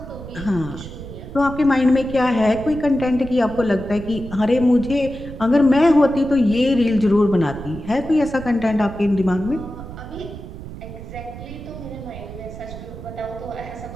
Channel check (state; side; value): noise; right; rumble, 12 dB below the sound